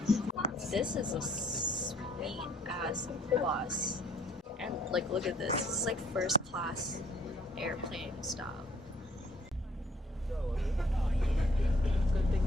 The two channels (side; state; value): both; normal; correlation 0.61